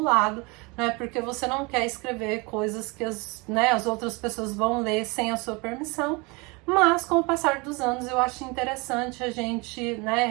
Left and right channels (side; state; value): left; quieter; 27.6 dB